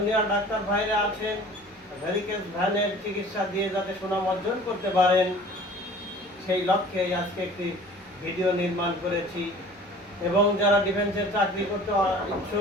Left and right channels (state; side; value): normal; both; correlation 0.46